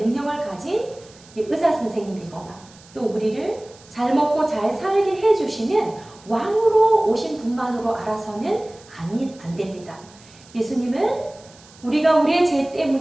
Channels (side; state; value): right; noise; hiss, 24 dB below the sound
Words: 가진 의사 선생님이거나 또 우리를 잘 먹고 잘 살게 해주시는 왕으로 오신 분만으로 알아서는 안 됩니다. 예수님은 우리가 우리의 죄